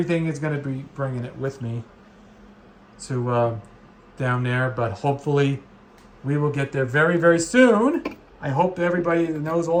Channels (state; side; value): identical; both; correlation 1.00